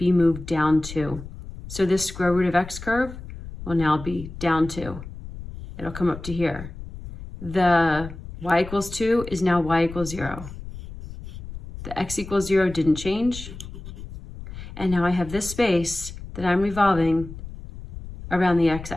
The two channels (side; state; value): left; noise; rumble, 12 dB below the sound